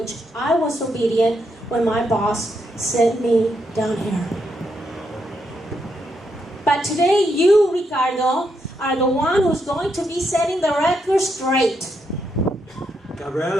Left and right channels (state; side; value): normal; both; correlation 0.80